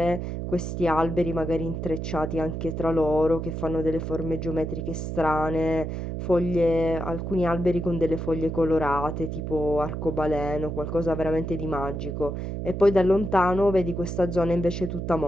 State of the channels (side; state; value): right; noise; hum, 4 dB below the sound